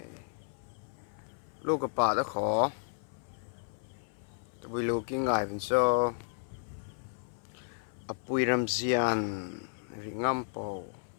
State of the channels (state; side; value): silent; right; 56 dB below the other